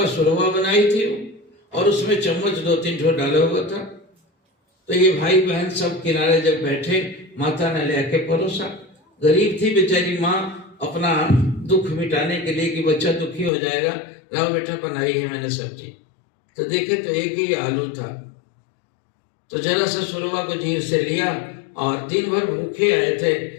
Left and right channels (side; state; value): right; drops out; at 13.5 s